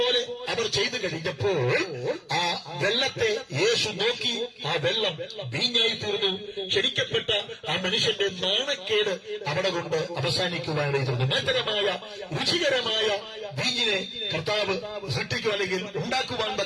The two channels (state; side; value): identical; both; correlation 1.00